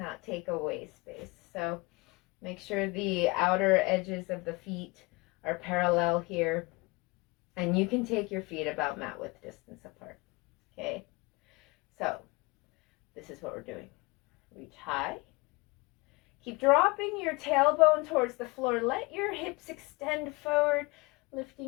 take away space. So make sure the outer edges of the feet are parallel here. And you can take your feet about mat width distance apart. Okay? So this is what we're doing. Reach high. Keep dropping your tailbone towards the floor. Let your hips extend forward,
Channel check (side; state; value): right; quieter; 25.4 dB